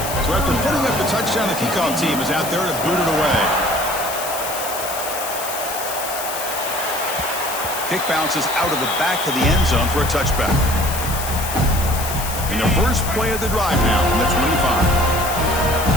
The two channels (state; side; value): noise; left; hiss, 7 dB below the sound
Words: So after putting up the touchdown, the kickoff team is out there to boot it away. Kick bounces out of the back of the end zone for a touchback. In the first play of the drive now from the 25.